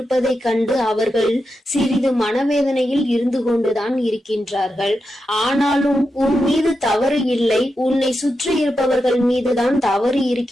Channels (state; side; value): normal; both; correlation 0.88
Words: கண்டு அவர்கள் சிறிது மனவேதனையில் இருந்து கொண்டுதான் இருக்கின்றார்கள். ஆனாலும் உன் மீது தவறு இல்லை, உன்னை சுற்றி இருப்பவர்கள் மீதுதான் தவறு